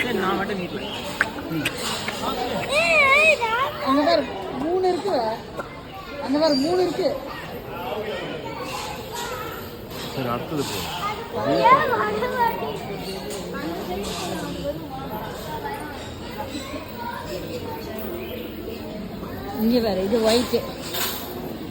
நான் மட்டும் நீட்ல அந்த மாதிரி 3 இருக்கு. அந்த மாதிரி 3 இருக்கு. சரி அடுத்தது போ. இங்க வேற இது ஒயிட்.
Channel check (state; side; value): identical; both; correlation 1.00